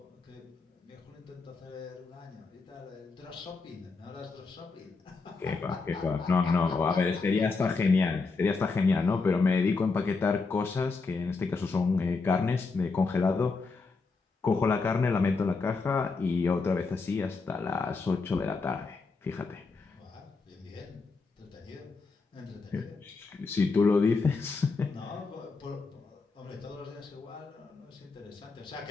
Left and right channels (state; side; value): quieter; right; 4.2 dB